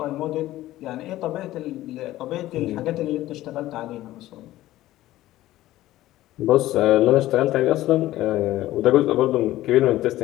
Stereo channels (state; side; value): quieter; right; 15.4 dB